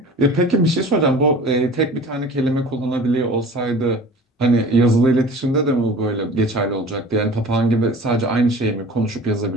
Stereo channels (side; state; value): both; normal; correlation 0.41